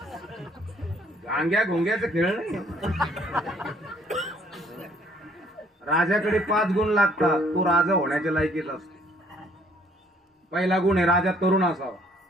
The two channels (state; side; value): normal; both; correlation 0.62